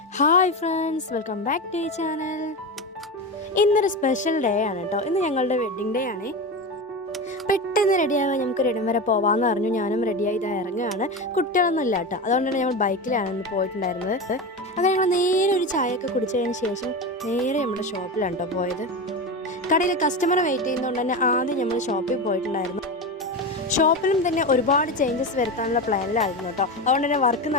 Hi friends, welcome back to ഈ channel. ഇന്നൊരു special day ആണ് കേട്ടോ. ഇന്ന് ഞങ്ങളുടെ വെഡ്ഡിങ് ഡേ ആണ്. പെട്ടെന്ന് റെഡിയാവാൻ നമുക്ക് റെഡി വരെ പോവാമെന്ന് പറഞ്ഞു. ഞാനും റെഡിയായി ഇതാ ഇറങ്ങുകയാണ്. കുട്ടികളൊന്നും ഇല്ല കേട്ടോ, അതുകൊണ്ട് തന്നെ ഞങ്ങൾ ബൈക്കിലാണ് ഇന്ന് പോയിട്ടുണ്ടായിരുന്നത്. അങ്ങനെ ഞങ്ങൾ നേരെ ഒരു ചായയൊക്കെ കുടിച്ചതിന് ശേഷം നേരെ നമ്മുടെ ഷോപ്പിലാണ് കേട്ടോ പോയത്. കടയിൽ കസ്റ്റമർ വെയിറ്റ് ചെയ്യുന്നതുകൊണ്ട് തന്നെ ആദ്യം നമ്മൾ ഷോപ്പിൽ പോയിട്ടുണ്ടായിരുന്നു. ഷോപ്പിലും തന്നെ ഒരുപാട് ചേഞ്ചസ് വരുത്താനുള്ള പ്ലാനിലായിരുന്നു കേട്ടോ. അതുകൊണ്ട് തന്നെ വർക്ക്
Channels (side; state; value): both; normal; correlation 0.21